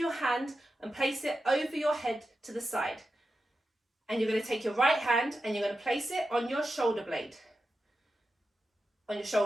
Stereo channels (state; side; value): normal; both; correlation 0.90